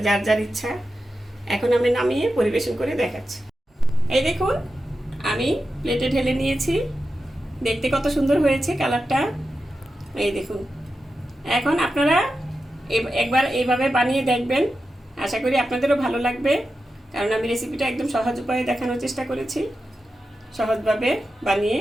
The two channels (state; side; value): normal; both; correlation 0.91